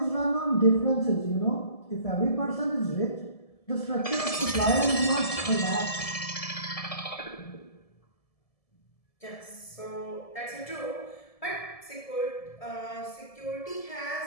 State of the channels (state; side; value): late; right; 1.7 ms